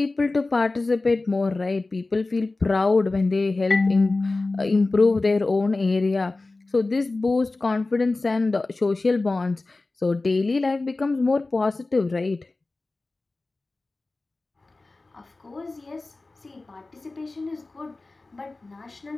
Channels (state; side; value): quieter; right; 3.3 dB